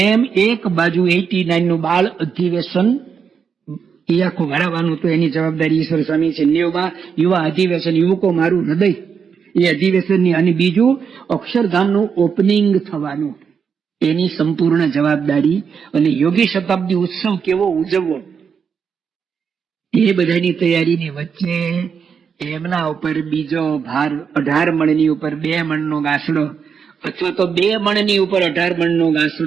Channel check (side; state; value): left; quieter; 6.6 dB